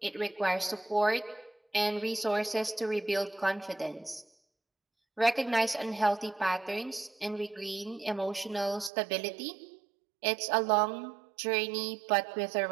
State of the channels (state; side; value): drops out; left; at 8.9 s